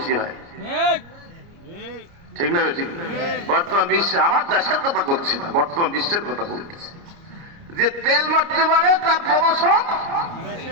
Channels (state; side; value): late; left; 29 ms